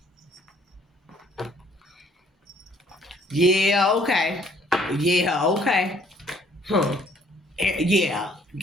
Yeah, okay. Yeah.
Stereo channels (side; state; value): both; normal; correlation 0.61